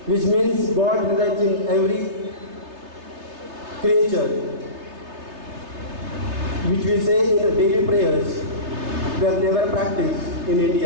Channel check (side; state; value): left; late; 3.3 ms